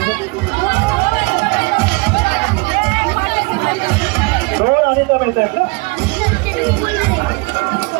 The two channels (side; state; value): left; quieter; 27.2 dB